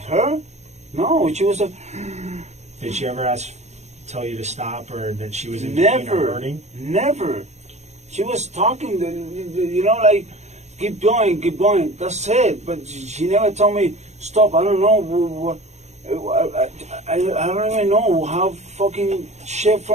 No, she was a... Did she ever tell you to stop or that she was in pain or Never. hurting? Never. She was talking, you know, like, keep going, keep going. That's it. But she never told me, stop. I don't know. I don't even know how fucking shit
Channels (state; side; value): late; left; 0.33 ms